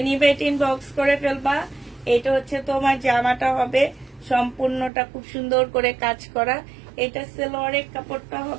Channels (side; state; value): left; drops out; at 4.9 s